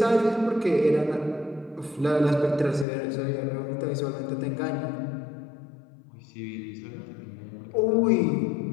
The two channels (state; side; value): drops out; right; at 2.9 s